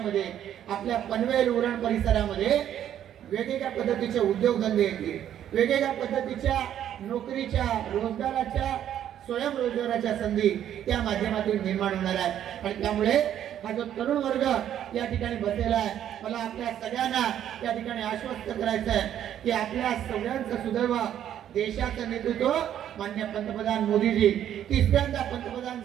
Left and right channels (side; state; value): left; quieter; 10.6 dB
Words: आपल्या पनवेल उरण परिसरामध्ये वेगवेगळ्या पद्धतीचे उद्योगधंदे येतील, वेगवेगळ्या पद्धतीच्या नोकरीच्या, रोजगाराच्या, स्वयंरोजगाराच्या संधी त्या माध्यमातून निर्माण होणार आहेत. आणि त्यामुळे हा जो तरुण वर्ग या ठिकाणी बसलेला आहे, मला आपल्या सगळ्यांना या ठिकाणी आश्वस्त करायचं आहे की आपल्या सगळ्यांचं सुदैव देशाचं नेतृत्व माननीय पंतप्रधान मोदीजी 3ऱ्यांदा पंतप्रधान